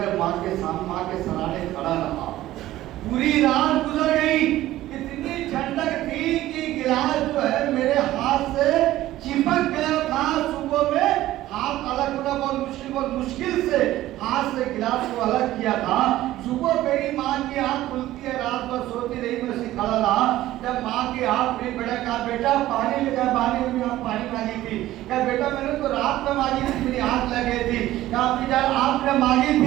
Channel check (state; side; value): quieter; left; 15.1 dB